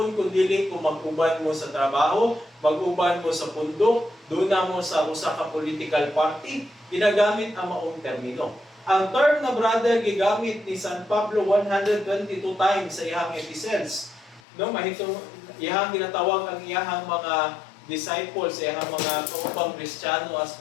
kundi kung mag-uban mo sa trabaho, mag-uban mo sa pundok, doon na mo sa usa ka political party, ginagamit ang maong termino. Ang term na brother gigamit ni San Pablo 122 times sa iyang epistles. No, mahitong iyang ginatawag ang iyang mga disciples, iyang mga kaupang Kristiyano as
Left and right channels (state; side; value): drops out; right; at 14.4 s